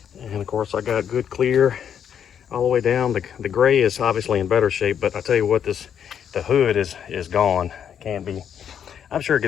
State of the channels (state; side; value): quieter; right; 8.5 dB